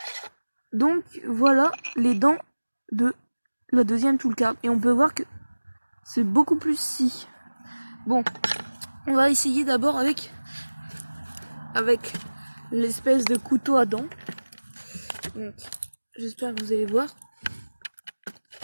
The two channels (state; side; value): inverted; both; correlation -1.00